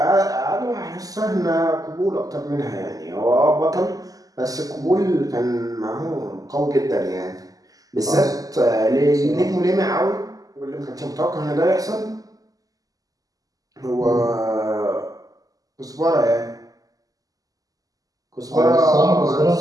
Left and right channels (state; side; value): late; left; 0.17 ms